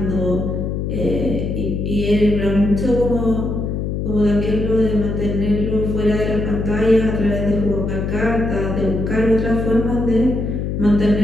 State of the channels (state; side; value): noise; left; hum, 2 dB below the sound